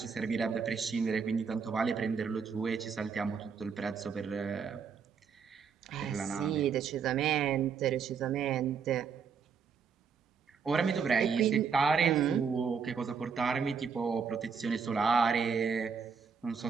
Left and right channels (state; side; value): quieter; left; 6.1 dB